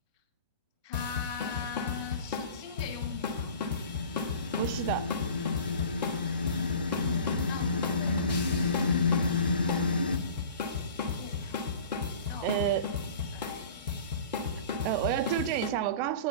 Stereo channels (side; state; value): both; inverted; correlation -0.40